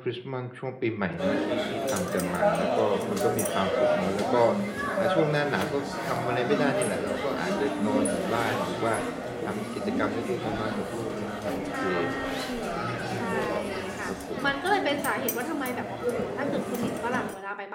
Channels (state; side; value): identical; both; correlation 1.00